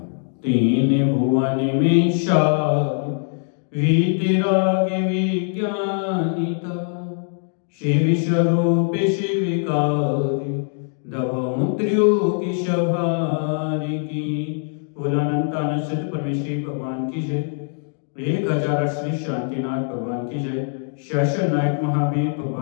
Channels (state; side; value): silent; right; 58 dB below the other